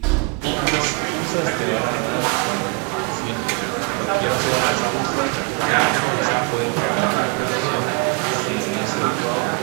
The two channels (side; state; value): left; quieter; 31.2 dB